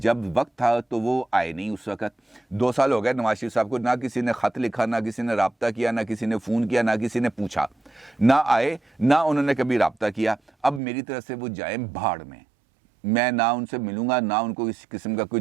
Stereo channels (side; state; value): left; drops out; at 10.8 s